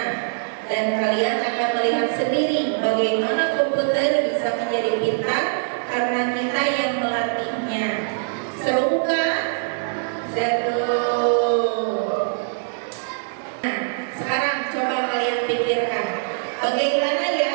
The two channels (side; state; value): left; silent; 64 dB below the other